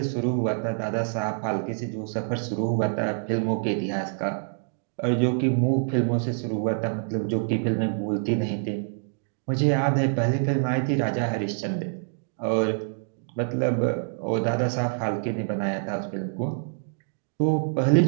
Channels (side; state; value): left; silent; digital silence